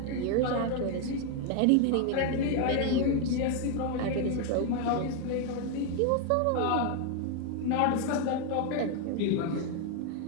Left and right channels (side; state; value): both; different; correlation 0.01